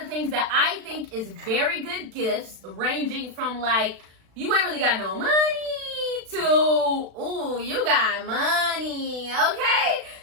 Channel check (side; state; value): left; late; 36 ms